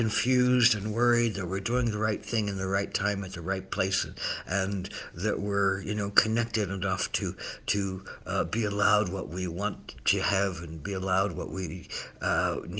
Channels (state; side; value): identical; both; correlation 1.00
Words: and worried that we're doing the right thing in the right time at the right place, and that we're connected enough to be allowed what we want to have and be allowed what we